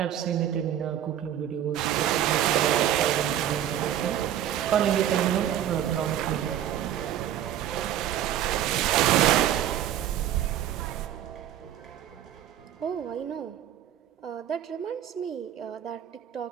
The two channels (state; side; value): quieter; left; 11.0 dB